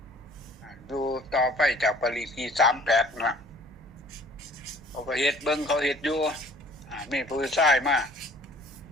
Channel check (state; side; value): normal; both; correlation 0.53